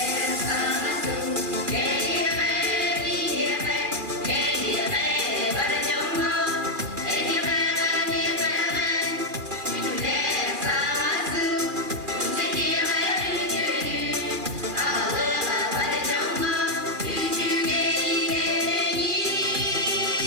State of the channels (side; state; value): left; late; 2.4 ms